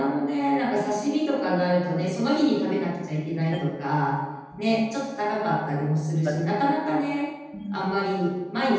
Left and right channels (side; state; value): both; identical; correlation 1.00